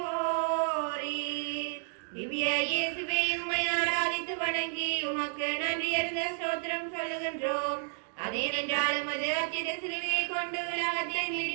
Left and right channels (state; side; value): silent; left; digital silence